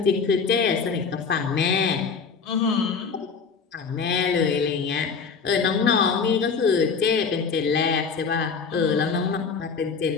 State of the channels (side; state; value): right; quieter; 5.5 dB